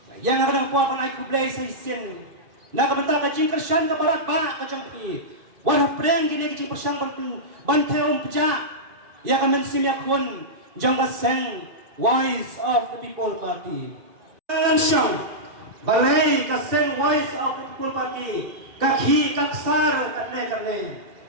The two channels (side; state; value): left; late; 2.6 ms